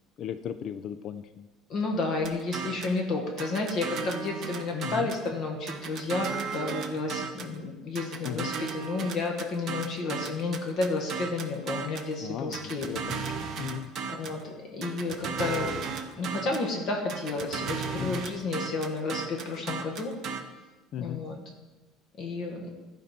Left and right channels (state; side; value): normal; both; correlation 0.50